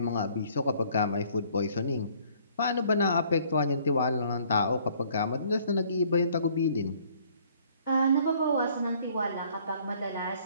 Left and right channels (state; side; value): inverted; both; correlation -0.59